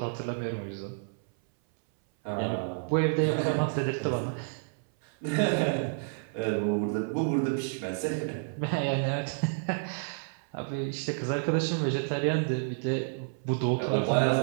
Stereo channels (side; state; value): left; silent; 58 dB below the other